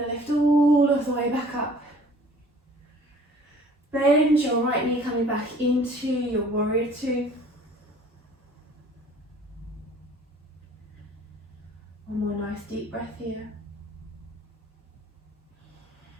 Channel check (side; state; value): both; normal; correlation 0.52